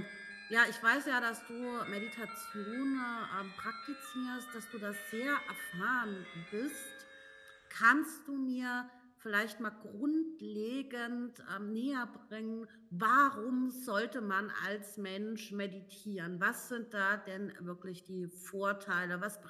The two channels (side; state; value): both; identical; correlation 1.00